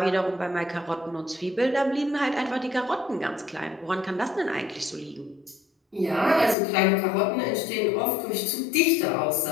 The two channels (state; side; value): drops out; right; at 6.6 s